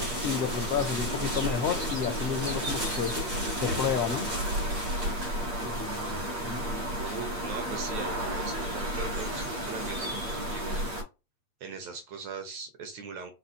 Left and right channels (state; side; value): late; left; 8.5 ms